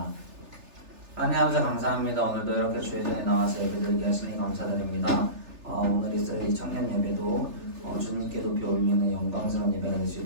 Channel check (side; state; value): left; late; 3.3 ms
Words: 하나님 아버지 감사합니다. 오늘도 이렇게 주의 전에 나와서 예배드리게 하시니 감사드립니다. 오늘 이스라엘 청년 예배도 주님께 높이 올리는 영광스러운 예배가 될 수